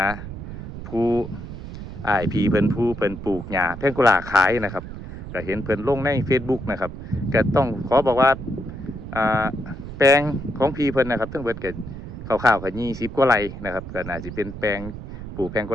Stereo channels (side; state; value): right; noise; rumble, 10 dB below the sound